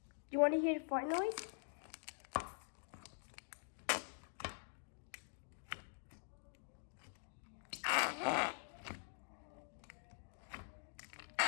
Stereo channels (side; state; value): right; silent; digital silence